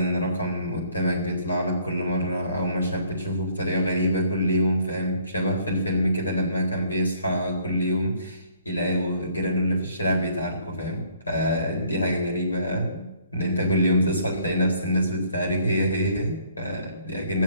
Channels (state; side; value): inverted; both; correlation -0.62